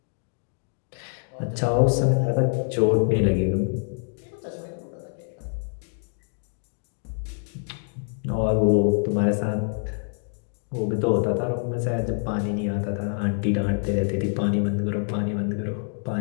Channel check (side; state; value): right; silent; 61 dB below the other